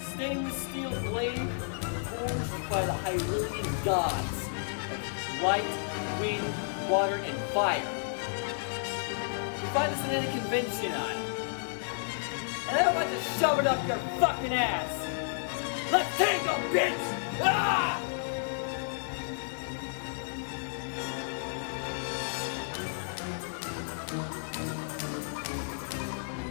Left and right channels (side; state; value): right; silent; digital silence